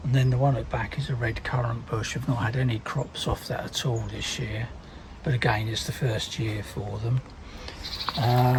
And then the one at the back is a red currant bush. I've not had any crops off that at all this year, but again, it's the first year for them.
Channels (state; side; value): identical; both; correlation 1.00